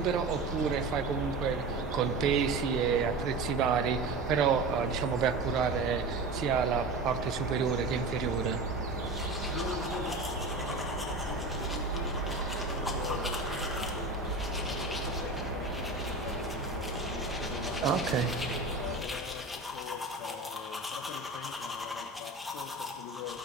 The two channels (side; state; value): left; quieter; 3.4 dB